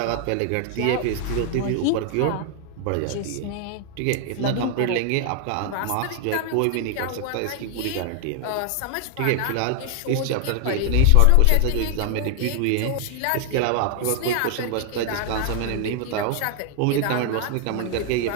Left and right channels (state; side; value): different; both; correlation 0.00